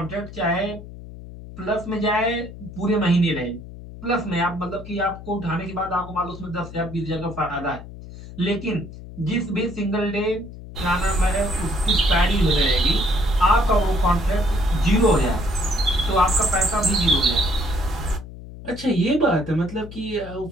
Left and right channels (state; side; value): noise; left; hum, 14 dB below the sound